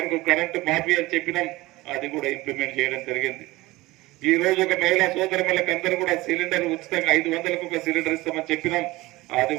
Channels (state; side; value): quieter; left; 19.9 dB